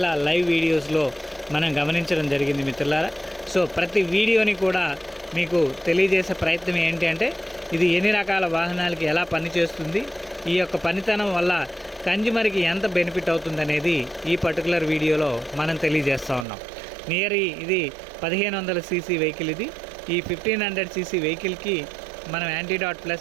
లైవ్ వీడియోస్లో మనం గమనించడం జరిగింది మిత్రులారా. సో ప్రతి వీడియోని కూడా మీకు తెలియజేసే ప్రయత్నం ఏంటి అంటే ఇది ఎన్ని రకాల వాహనాలకి ఎలా పనిచేస్తుంది, ఈ యొక్క పనితనం వల్ల కన్జ్యూమర్కి ఎంత బెనిఫిట్ అవుతుందనేది ఈ పర్టికులర్ వీడియోలో మనం తెలియజేస్తూ ఉన్నాం. ఇది 1500 cc వెహికల్. ఇది ఈ 1500 cc వెహికల్కి మనం యాంటీడాట్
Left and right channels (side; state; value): left; drops out; at 16.4 s